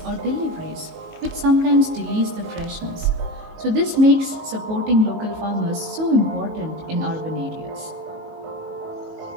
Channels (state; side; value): late; left; 19 ms